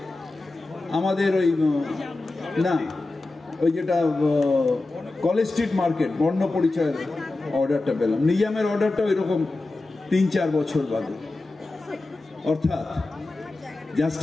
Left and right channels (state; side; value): quieter; right; 3.1 dB